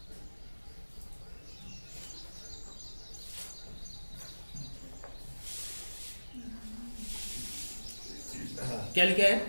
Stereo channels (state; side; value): inverted; both; correlation -1.00